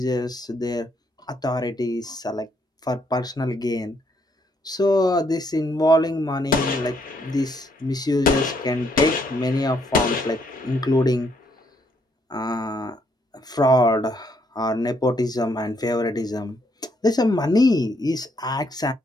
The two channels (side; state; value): both; normal; correlation 0.72